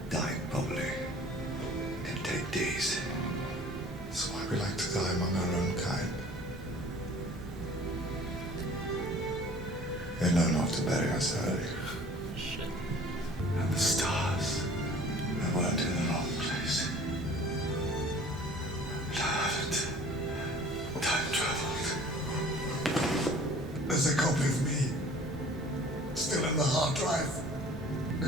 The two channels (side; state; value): both; normal; correlation 0.48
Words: Dying probably can take days. That's why we like to die among our own kind. We know not to bury us early. Shit. And the stars, they weren't in the wrong place. I haven't time traveled. There's a copy of me still in the hard drive.